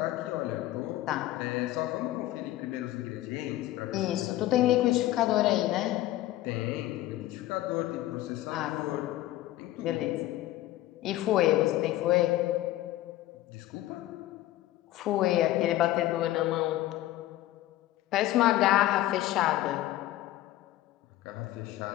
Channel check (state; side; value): quieter; right; 15.3 dB